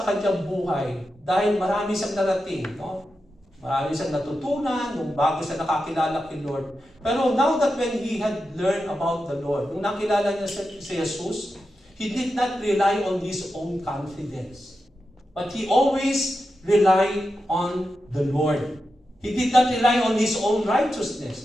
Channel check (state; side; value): normal; both; correlation 0.90